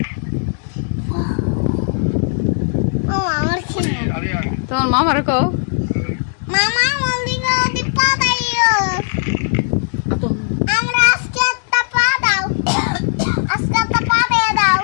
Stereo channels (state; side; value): silent; right; digital silence